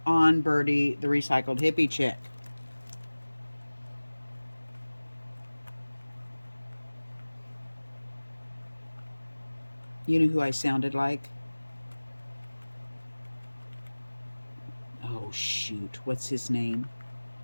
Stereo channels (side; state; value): both; inverted; correlation -1.00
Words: on Birdie, the Recycled Hippie Chick. You know who I sounded like? Oh, shoot. What's his name?